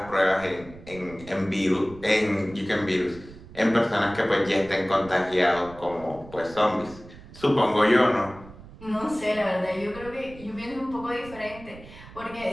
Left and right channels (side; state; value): right; noise; rumble, 18 dB below the sound